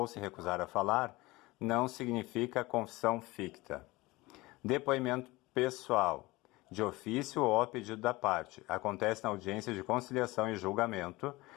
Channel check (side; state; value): right; quieter; 21.1 dB